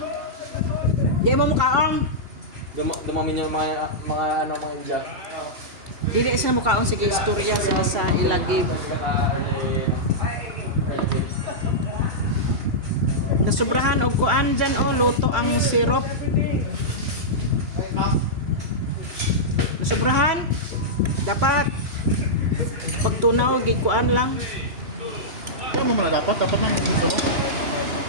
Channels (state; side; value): late; left; 2.9 ms